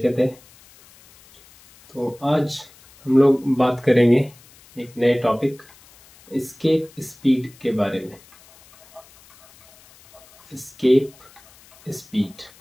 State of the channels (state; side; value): noise; left; hiss, 26 dB below the sound